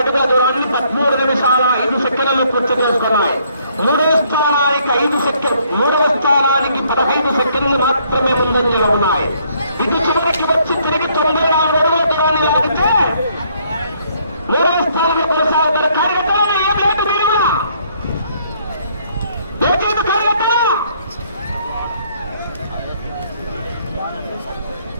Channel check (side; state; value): both; inverted; correlation -0.66